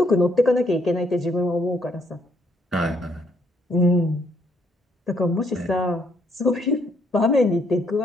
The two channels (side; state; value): both; normal; correlation 0.71